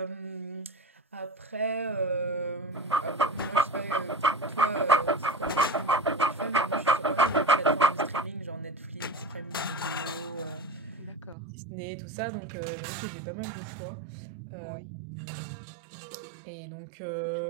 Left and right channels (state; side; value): drops out; left; at 11.4 s